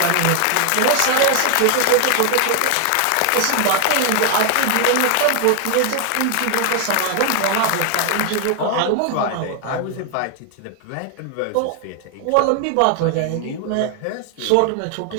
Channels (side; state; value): both; different; correlation 0.00